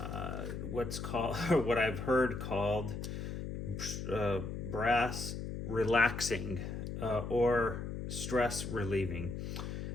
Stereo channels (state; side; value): noise; left; hum, 5 dB below the sound